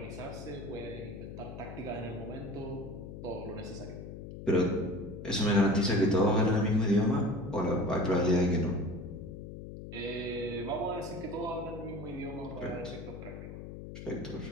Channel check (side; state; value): left; noise; hum, 10 dB below the sound